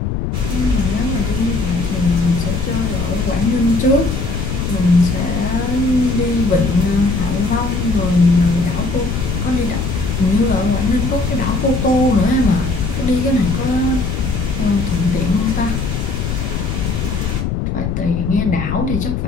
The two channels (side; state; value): left; noise; rumble, 2 dB below the sound